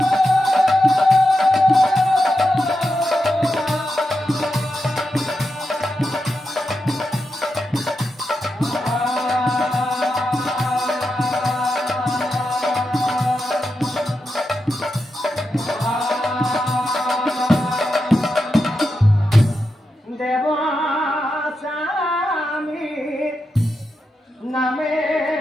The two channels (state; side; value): normal; both; correlation 0.87